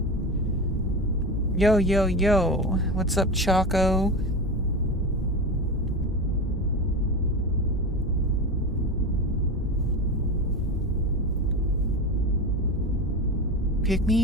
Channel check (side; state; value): both; normal; correlation 0.24